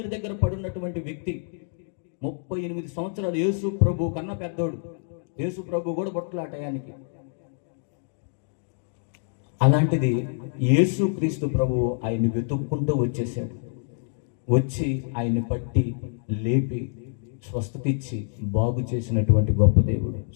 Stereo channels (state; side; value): silent; right; digital silence